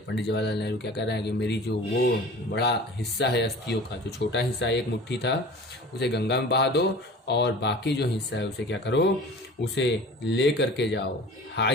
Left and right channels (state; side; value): normal; both; correlation 0.40